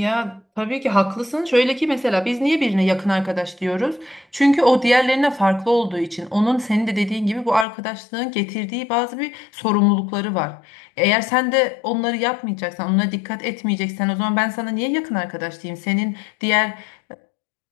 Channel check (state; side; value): drops out; right; at 7.7 s